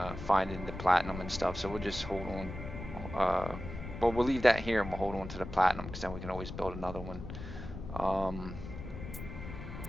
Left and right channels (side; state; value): left; noise; rumble, 9 dB below the sound